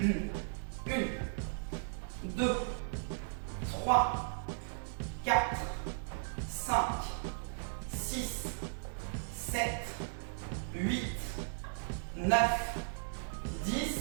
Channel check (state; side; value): silent; left; digital silence